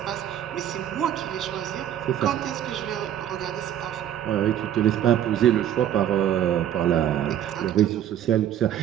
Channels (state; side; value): quieter; left; 10.8 dB